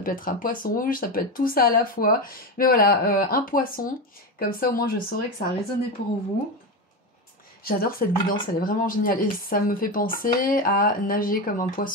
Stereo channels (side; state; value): both; normal; correlation 0.16